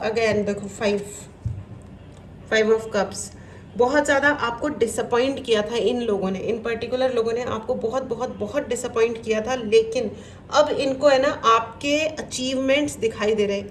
अगेन, देखो 5 ऑफ कप्स, बहुत ज़्यादा आपको डिसअपॉइंट किया था इन लोगों ने, इन पर्टिकुलर लोगों ने आपको बहुत बहुत बहुत डिसअपॉइंट किया था, लेकिन अब इनको है ना आपके अचीवमेंट्स दिखाई दे रहे हैं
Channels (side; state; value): both; identical; correlation 1.00